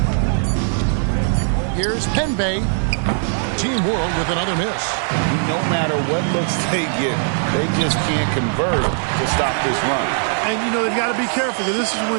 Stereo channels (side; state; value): left; silent; 58 dB below the other